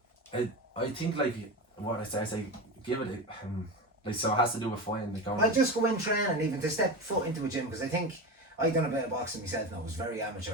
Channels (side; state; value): both; normal; correlation 0.23